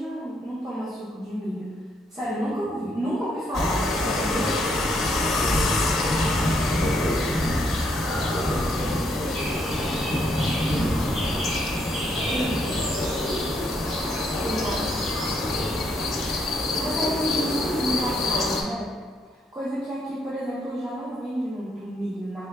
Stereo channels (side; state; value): both; normal; correlation 0.73